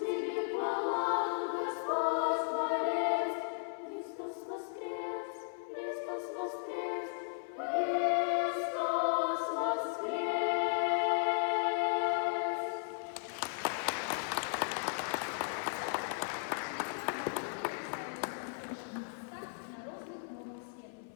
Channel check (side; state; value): right; silent; 54 dB below the other